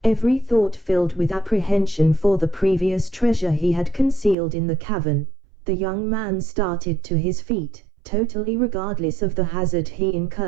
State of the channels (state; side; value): drops out; left; at 4.4 s